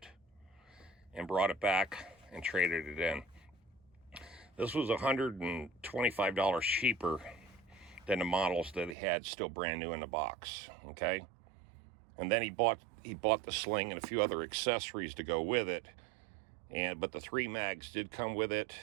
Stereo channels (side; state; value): left; drops out; at 9.0 s